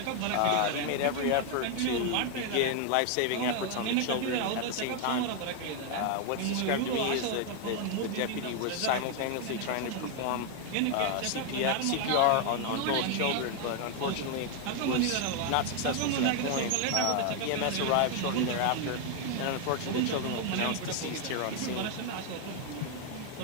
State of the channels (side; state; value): both; different; correlation 0.00